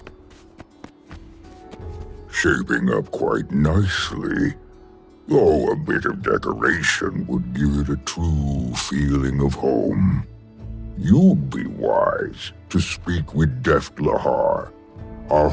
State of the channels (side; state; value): both; identical; correlation 1.00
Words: Shaping up quite nicely. Though a bit of decoration would give it a true feeling of home. You'd be wise to speak with Deft Lahar, our